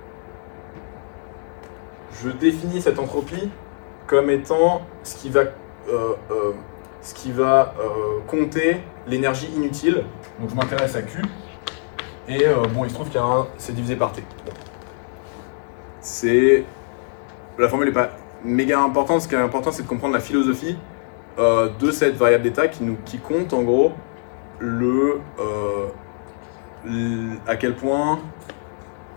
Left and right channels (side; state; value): right; silent; 62 dB below the other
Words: je définis cette entropie comme étant ce qui va compter l'énergie inutile. Donc je m'intéresse à Q, et bon, il se trouve qu'il y a c'est divisé par T. La formule n'est pas méga importante. Ce qui est important, c'est de comprendre la philosophie de cette variable d'état qui compte en gros à quel point